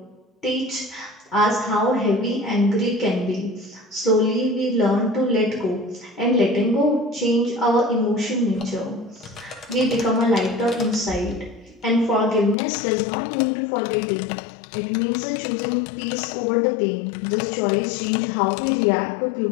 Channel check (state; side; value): drops out; right; at 12.6 s